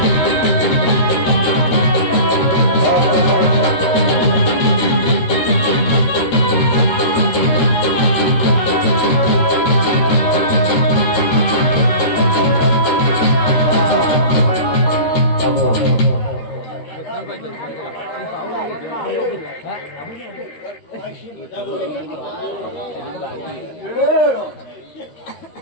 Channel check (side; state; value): right; late; 13 ms